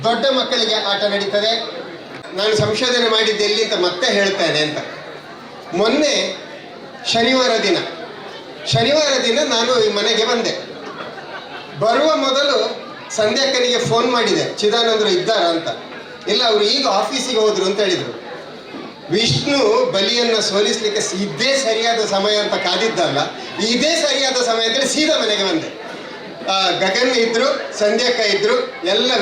ದೊಡ್ಡ ಮಕ್ಕಳಿಗೆ ಆಟ ನಡೀತದೆ. ನಾನು ಸಂಶೋಧನೆ ಮಾಡಿದ್ದೆ ಎಲ್ಲಿ ಅಂತ ಮತ್ತೆ ಹೇಳ್ತೇನೆ ಅಂತ. ಮೊನ್ನೆ ಶನಿವಾರ ದಿನ ನಾನು ಈ ಮನೆಗೆ ಬಂದೆ. ಬರುವ ಮೊದಲು ಸಂಧ್ಯಾಕ್ಕನಿಗೆ ಫೋನ್ ಮಾಡಿದೆ, ಚಿದಾನಂದರು ಇದ್ದಾರಾ ಅಂತ. ಇಲ್ಲ, ಅವರು ಈಗ ಆಫೀಸಿಗೆ ಹೋದ್ರು ಅಂತ ಹೇಳಿದರು. ವಿಷ್ಣು ಬಲಿಯನ್ನು ಸೋಲಿಸ್ಲಿಕ್ಕೆ ಇದೇ ಸರಿಯಾದ ಸಮಯ ಅಂತ ಕಾದಿದ್ದಲ್ಲ, ಇದೇ ಸರಿಯಾದ ಸಮಯ ಅಂತೇಳಿ ಸೀದಾ ಮನೆಗೆ ಬಂದೆ. ಗಗನ್ ಇದ್ರು, ಸಂಧ್ಯಾಕ್ಕ ಇದ್ರು, ಎಲ್ಲ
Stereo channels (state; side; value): identical; both; correlation 1.00